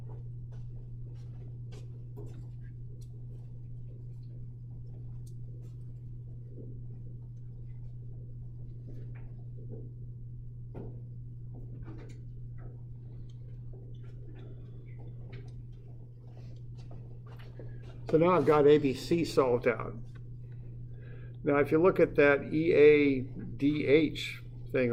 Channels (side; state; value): both; identical; correlation 1.00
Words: So now I've got ABC solved out. Now if you look at that EADH thing